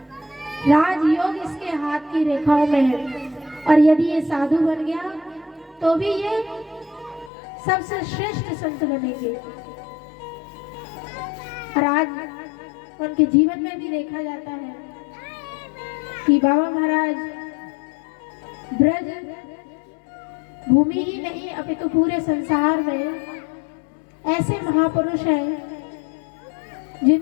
राजयोग इसके हाथ की रेखाओं में है, और यदि ये साधु बन गया तो भी ये सबसे श्रेष्ठ संत बनेंगे। और आज उनके जीवन में भी देखा जाता है कि बाबा महाराज ब्रज भूमि ही नहीं अपितु पूरे संसार में ऐसे महापुरुष हैं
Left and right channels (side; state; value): right; drops out; at 7.3 s